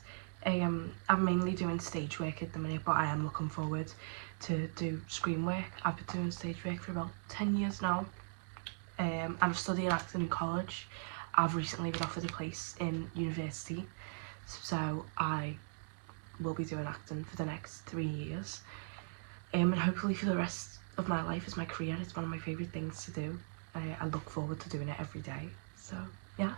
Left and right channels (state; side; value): silent; left; digital silence